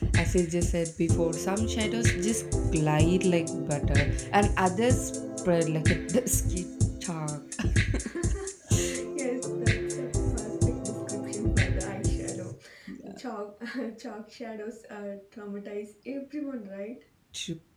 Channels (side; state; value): both; identical; correlation 1.00